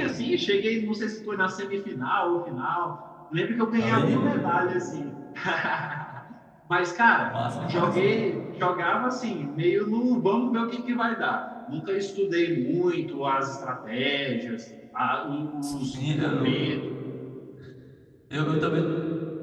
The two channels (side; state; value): both; identical; correlation 1.00